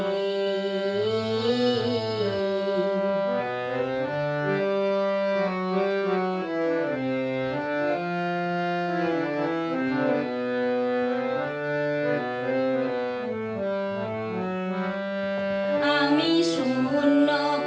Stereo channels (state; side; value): identical; both; correlation 1.00